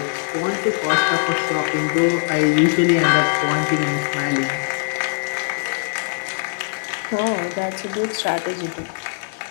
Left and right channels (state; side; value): silent; right; digital silence